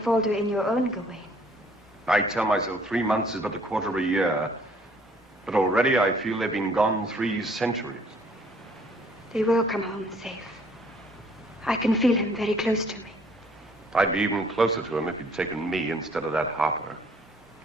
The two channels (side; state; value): both; normal; correlation 0.60